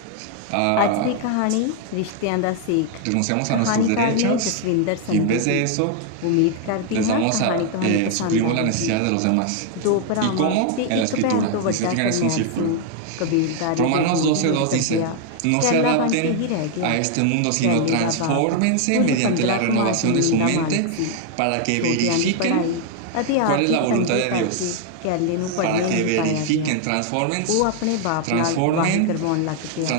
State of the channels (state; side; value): different; both; correlation 0.00